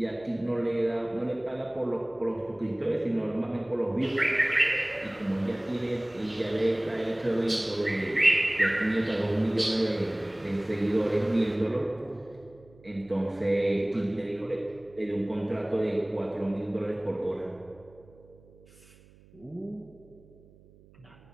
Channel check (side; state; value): right; noise; hum, 26 dB below the sound